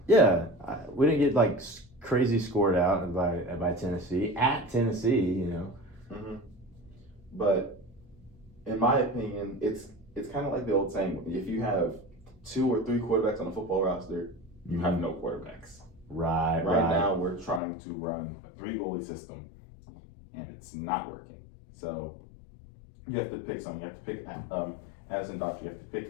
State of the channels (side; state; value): right; drops out; at 17.6 s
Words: Yeah, we didn't get like crazy scored out by Tennessee at Tennessee, you know. Mm-hmm. But in my opinion, it's kind of like the old saying: if you have 2 or 3 quarterbacks on a football roster, you have no quarterbacks. Right. Right now, we're trying to run a 3-goalie system, and it's not working. So you have to pick something. You have to pick Addison Dodge. You have to